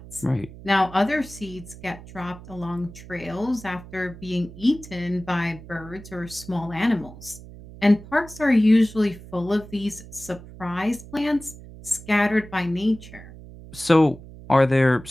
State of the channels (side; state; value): right; noise; hum, 17 dB below the sound